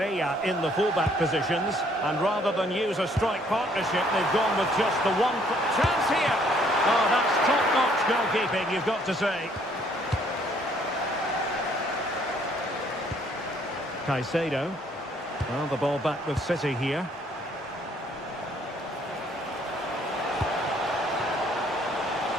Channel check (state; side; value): normal; both; correlation 0.64